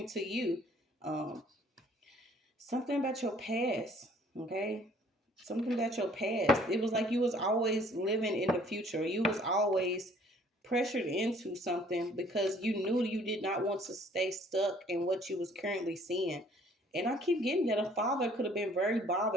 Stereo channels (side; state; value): both; normal; correlation 0.58